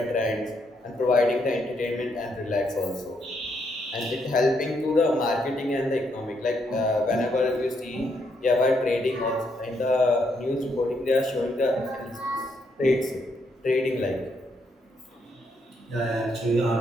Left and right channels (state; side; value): normal; both; correlation 0.76